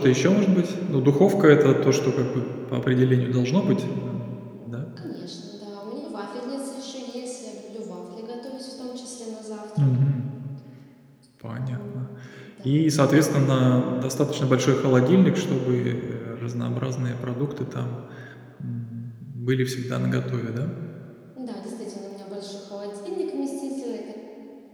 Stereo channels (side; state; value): both; identical; correlation 1.00